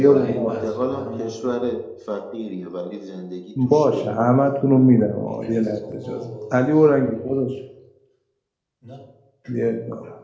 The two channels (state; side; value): identical; both; correlation 1.00